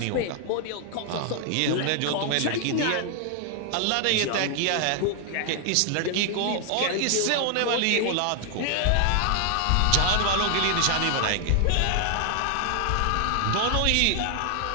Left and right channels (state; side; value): different; both; correlation 0.00